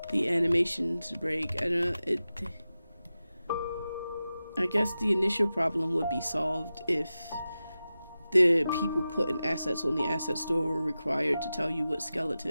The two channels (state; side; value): inverted; both; correlation -0.93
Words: the animations break. I guess the initial problem would be solved if the people putting assets on the asset store were required to tell you what